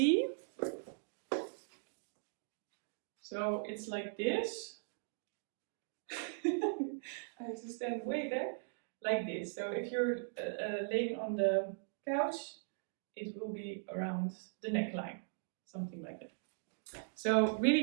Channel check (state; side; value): silent; left; digital silence